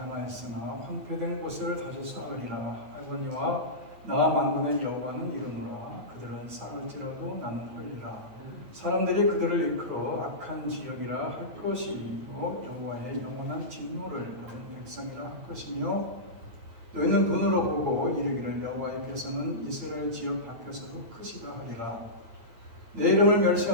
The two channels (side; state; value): left; late; 9.5 ms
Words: 황폐된 곳을 다시 쌓으리라 하거니와 나 만군의 여호와는 이르노라. 그들은 쌓을지라도 나는 헐리라. 사람들이 그들을 이끌어 악한 지역이라 할 것이요 여호와의 영원한 진노를 받은 백성이라 할 것이며 너희는 눈으로 보고 이르기를 여호와께서는 이스라엘 지역 밖에서도 크시다 하리라. 내 이름을